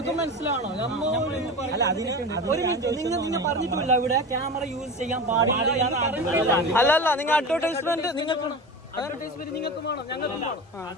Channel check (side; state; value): both; normal; correlation 0.28